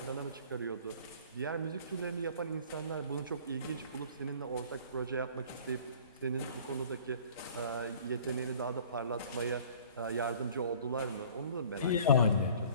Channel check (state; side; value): inverted; both; correlation -0.49